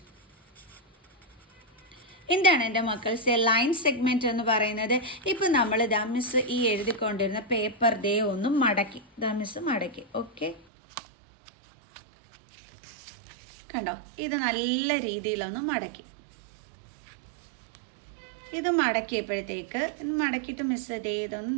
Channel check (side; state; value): left; drops out; at 10.7 s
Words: എന്താണ് എൻ്റെ മക്കൾസ് ലൈൻ സെഗ്മെന്റ് എന്ന് പറയുന്നത്? ഇപ്പം നമ്മൾ മിസ് ഈ എഴുതിക്കൊണ്ടിരുന്ന പേപ്പർ ദേ ഒന്ന് മടക്കി, മിസ് മടക്കി. ഓക്കെ, കണ്ടോ, ഇത് നല്ല രീതിയിലൊന്ന് മടക്കി. ഇത് മടക്കിയപ്പോഴത്തേക്ക് മടക്കിയിട്ട് മിസ് ദേ ഇതൊന്ന്